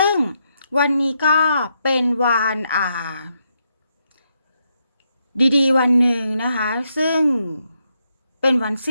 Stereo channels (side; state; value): both; inverted; correlation -0.80